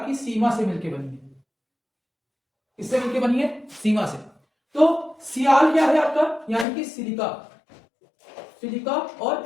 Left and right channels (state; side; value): drops out; right; at 6.7 s